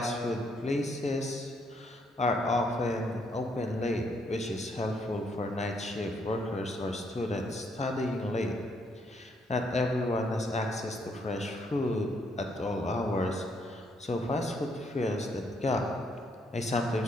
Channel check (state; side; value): normal; both; correlation 0.72